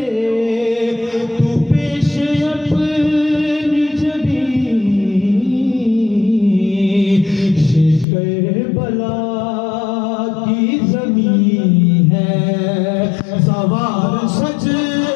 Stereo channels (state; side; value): drops out; right; at 8.1 s